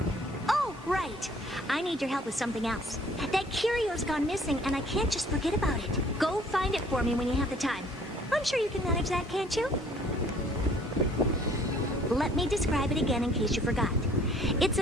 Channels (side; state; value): both; normal; correlation 0.57